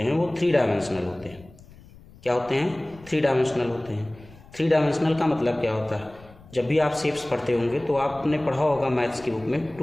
हैं वो 3 डायमेंशनल होते हैं। क्या होते हैं? 3 डायमेंशनल होते हैं। 3 डायमेंशनल का मतलब क्या होता है? जब भी आप शेप्स पढ़ते होंगे तो आपने पढ़ा होगा मैथ्स की बुक में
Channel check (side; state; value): left; noise; rumble, 22 dB below the sound